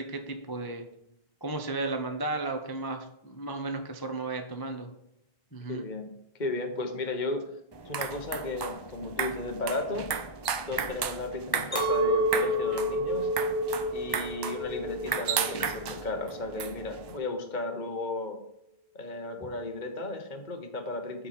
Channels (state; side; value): late; right; 1.2 ms